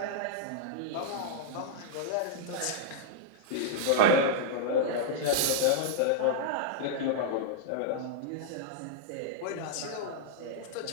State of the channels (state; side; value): different; both; correlation -0.02